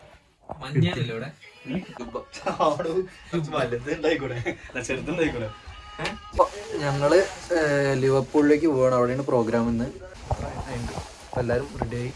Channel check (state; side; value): identical; both; correlation 1.00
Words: ഞങ്ങള് ലിവർപൂളിലേക്ക് പോവാണ്. അവിടെയാണ് പ്രോഗ്രാം ഇന്ന്. എല്ലാരും റെഡി ആയി